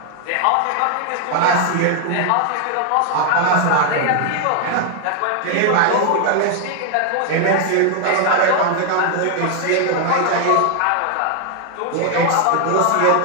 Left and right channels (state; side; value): different; both; correlation 0.00